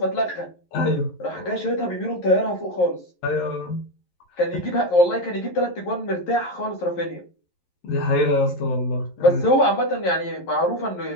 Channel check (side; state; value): right; late; 11 ms